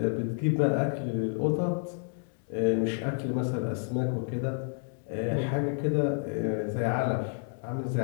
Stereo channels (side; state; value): right; silent; 58 dB below the other